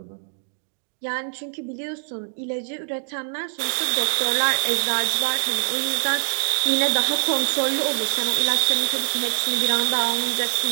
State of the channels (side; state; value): left; silent; digital silence